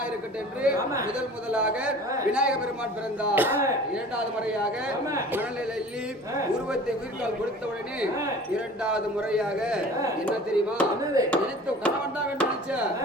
இருக்கட்டும் என்று முதலாக விநாயக பெருமான் பிறந்தார். இரண்டாவது முறையாக மணலில் எள்ளி உருவத்தை உயிர்கால் கொடுத்த உடனே இரண்டாவது முறையாக என்ன தெரியுமா? நினைத்த கணவன் தான் வேண்டும் நினைச்ச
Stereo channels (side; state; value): both; normal; correlation 0.43